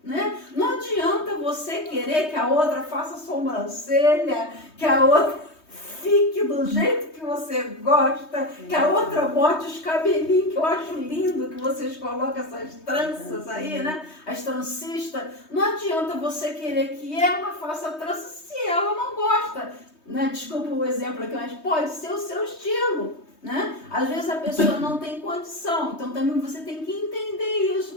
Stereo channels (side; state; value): right; late; 3.2 ms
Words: Né? Não adianta você querer que a outra faça sobrancelha, que a outra fique do jeito que você gosta, que a outra bote os cabelinhos, que eu acho lindo que vocês colocam essas tranças aí, né? As trancistas. Não adianta você querer que ela faça trança se ela não gosta. Né? Desculpa o exemplo aqui, mas pode ser o seu estilo. Né? Às vezes a pessoa não tem condição, então também você tem que entender